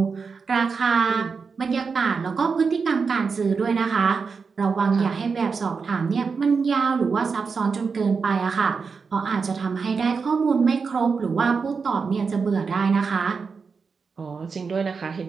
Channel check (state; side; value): quieter; left; 5.2 dB